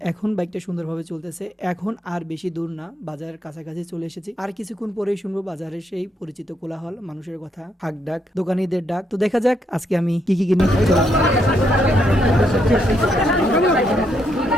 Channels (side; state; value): both; normal; correlation 0.76